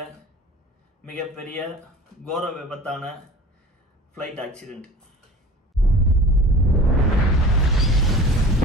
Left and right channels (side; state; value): both; normal; correlation 0.41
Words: மிகப்பெரிய கோர விபத்தான ஃப்ளைட் ஆக்சிடெண்ட்.